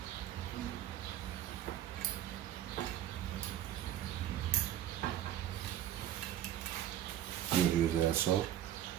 You would use that so.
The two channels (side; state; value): left; quieter; 11.8 dB